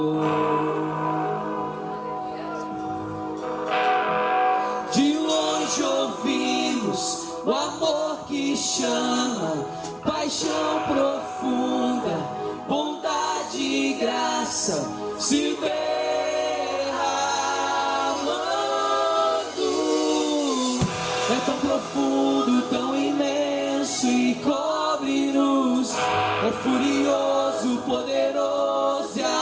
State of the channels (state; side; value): identical; both; correlation 1.00